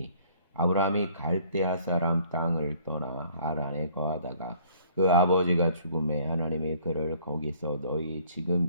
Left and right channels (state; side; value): inverted; both; correlation -0.57